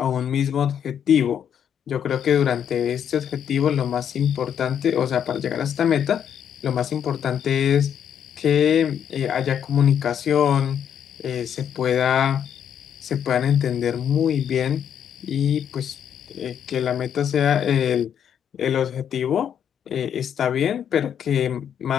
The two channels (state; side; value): quieter; right; 8.7 dB